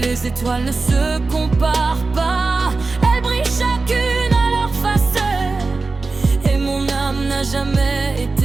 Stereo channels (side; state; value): left; quieter; 3.8 dB